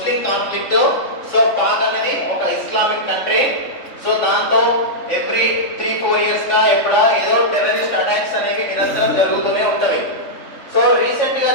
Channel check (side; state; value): right; late; 3.4 ms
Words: కాన్ఫ్లిక్ట్. సో పాక్ అనేది ఒక ఇస్లామిక్ కంట్రీ. సో దాంతో ఎవ్రీ 3-4 years గా ఏదో టెర్రరిస్ట్ అటాక్స్ అనేవి నిరంతరం జరుగుతూనే ఉంటవి. సో రీసెంట్ గా